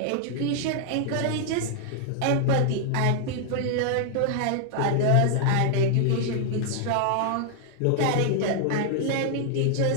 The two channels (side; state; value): both; different; correlation -0.01